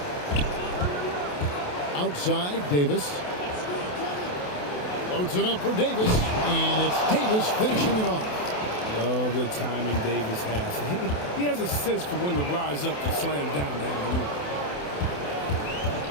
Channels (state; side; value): late; right; 28 ms